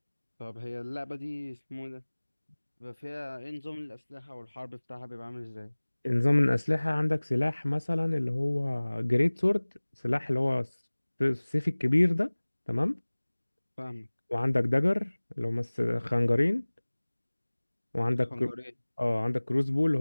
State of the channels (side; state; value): both; inverted; correlation -1.00